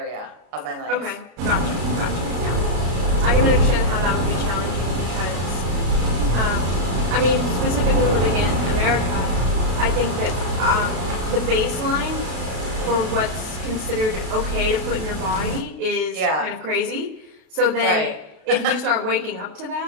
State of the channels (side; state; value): left; late; 33 ms